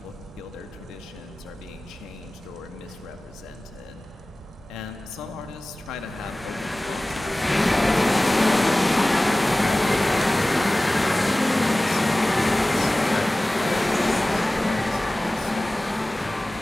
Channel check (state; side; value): normal; both; correlation 0.97